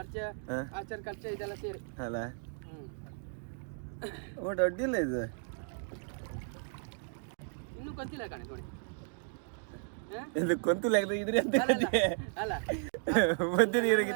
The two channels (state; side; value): silent; left; 55 dB below the other